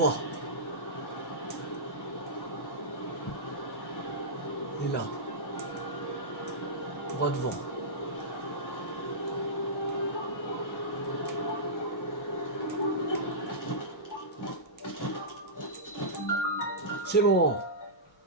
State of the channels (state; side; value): normal; both; correlation -0.16